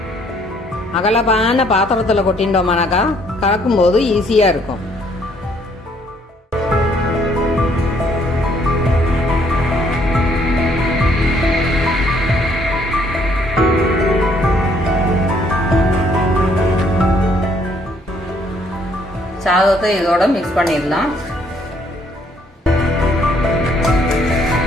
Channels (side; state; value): both; normal; correlation 0.65